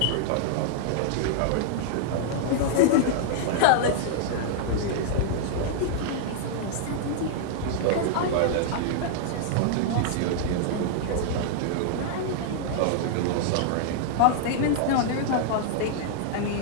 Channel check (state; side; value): different; both; correlation -0.01